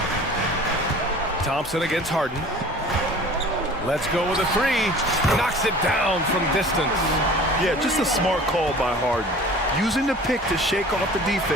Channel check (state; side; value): normal; both; correlation 0.44